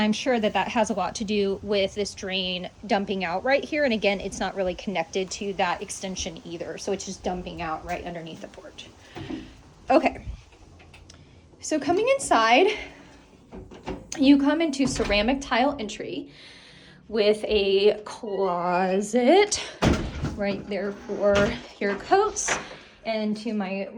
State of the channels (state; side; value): identical; both; correlation 1.00